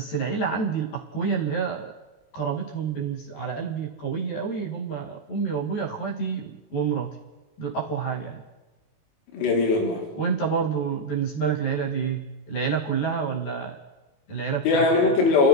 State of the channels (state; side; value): late; right; 19 ms